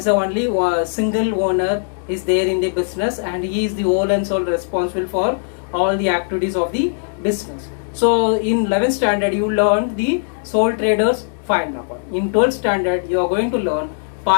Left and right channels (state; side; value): silent; right; digital silence